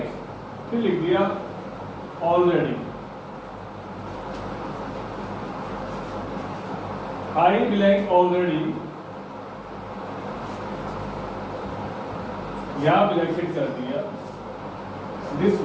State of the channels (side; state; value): both; identical; correlation 1.00